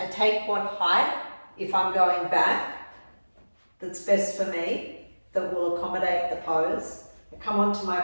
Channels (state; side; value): inverted; both; correlation -1.00